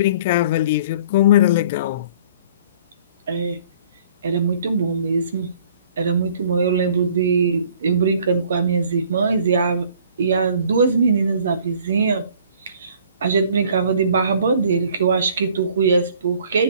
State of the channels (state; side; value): inverted; both; correlation -0.54